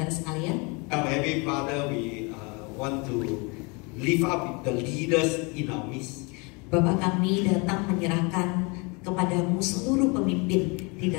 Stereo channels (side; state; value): right; quieter; 29.9 dB